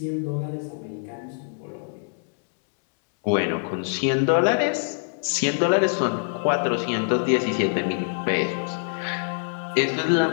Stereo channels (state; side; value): silent; right; digital silence